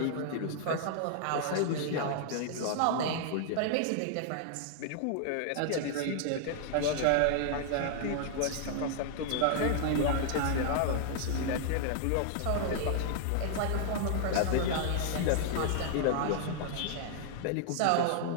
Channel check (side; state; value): both; different; correlation -0.01